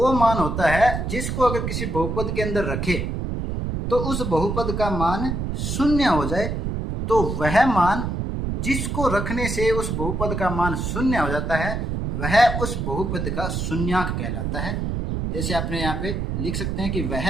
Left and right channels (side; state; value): right; noise; rumble, 2 dB below the sound